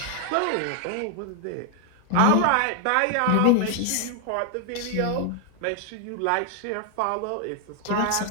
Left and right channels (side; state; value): both; different; correlation 0.00